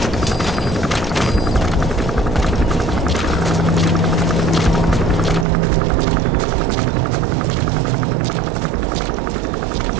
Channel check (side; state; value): left; drops out; at 5.5 s